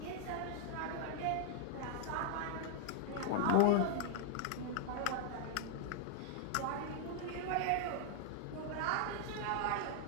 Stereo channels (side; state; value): both; different; correlation -0.01